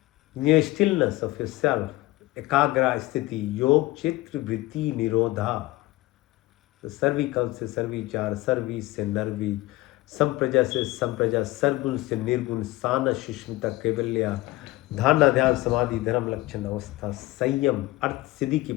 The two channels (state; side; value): quieter; right; 19.2 dB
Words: In your stillness of yourself, ekagra sthiti, योग, चित्र, वृत्ति, निरोधा. तो सर्विकल से सर्विचार, सर्वी से नर्वी, संप्रजा से संप्रजा, सरगुण से निर्गुण, साना, सुष्मिता, कैवल्या, धारणा, ध्यान, समाधि, धर्म, लक्षण, अवस्था, संयम, अर्थ सिद्धि की